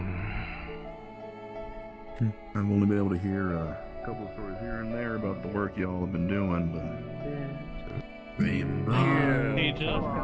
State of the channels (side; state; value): both; identical; correlation 1.00